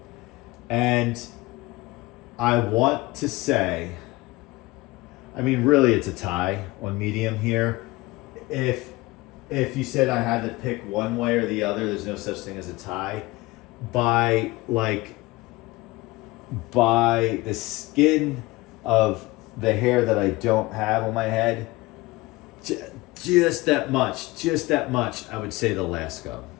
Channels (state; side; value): quieter; right; 20.9 dB